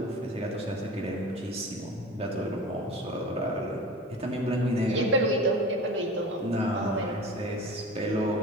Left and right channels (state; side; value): normal; both; correlation 0.35